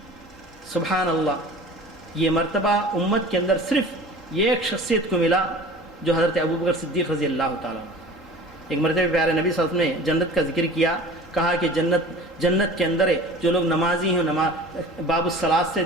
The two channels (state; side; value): normal; both; correlation 0.42